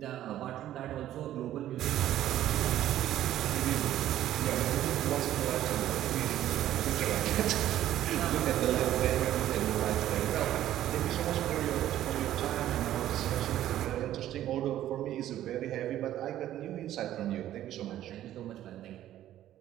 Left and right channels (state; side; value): quieter; left; 12.7 dB